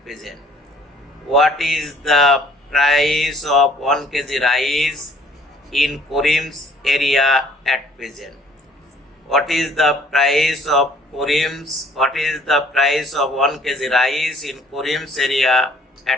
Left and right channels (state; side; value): normal; both; correlation 0.57